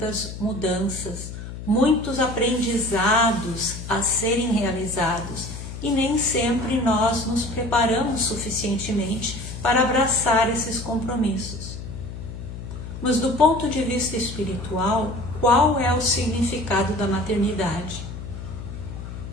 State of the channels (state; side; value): noise; left; hum, 9 dB below the sound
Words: mudanças, muitos aprendizados a serem realizados e nem sempre nós nos preparamos suficientemente para abraçar esses compromissos. Mas do ponto de vista espiritual, qual é o significado da maternidade?